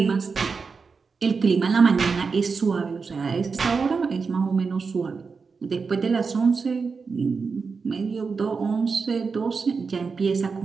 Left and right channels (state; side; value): quieter; left; 5.0 dB